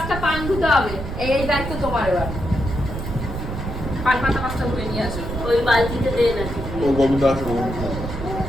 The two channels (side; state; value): right; noise; rumble, 6 dB below the sound